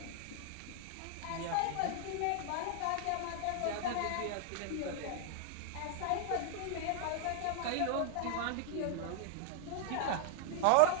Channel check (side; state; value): both; different; correlation 0.00